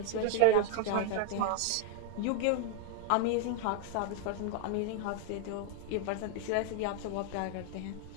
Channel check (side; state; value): both; different; correlation 0.01